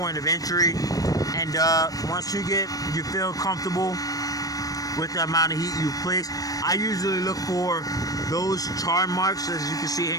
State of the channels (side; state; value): right; late; 0.18 ms